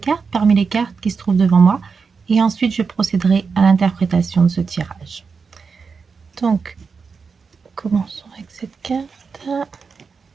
parmi les cartes qui se trouvent devant moi. Et ensuite, je procéderai à l'interprétation de ce tirage. Donc, commençons avec cette carte.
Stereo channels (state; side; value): quieter; left; 5.3 dB